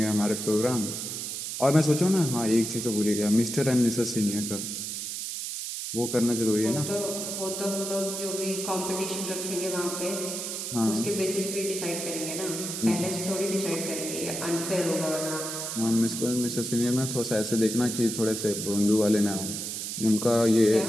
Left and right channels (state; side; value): noise; right; hiss, 5 dB below the sound